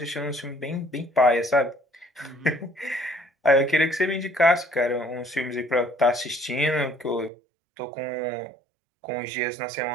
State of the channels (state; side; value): drops out; left; at 7.3 s